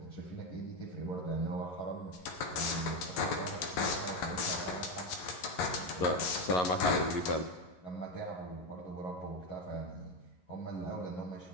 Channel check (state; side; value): late; right; 11 ms